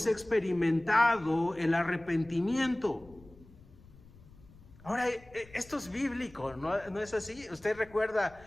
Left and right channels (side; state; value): left; noise; rumble, 23 dB below the sound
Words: experimentado el arrepentimiento. Ahora, esto es bíblico, ¿no es así? Usted